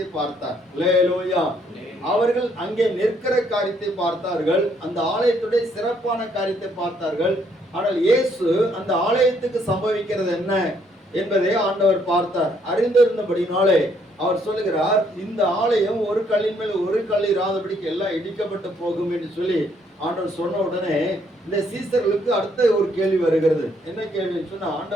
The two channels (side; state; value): both; normal; correlation 0.69